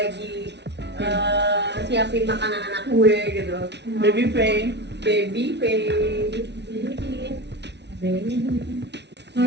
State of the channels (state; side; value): late; left; 0.50 ms